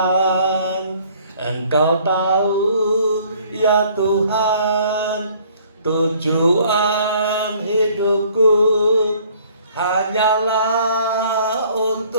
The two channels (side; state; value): both; inverted; correlation -0.58